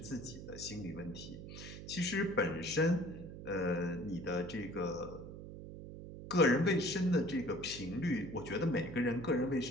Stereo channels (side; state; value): right; noise; hum, 11 dB below the sound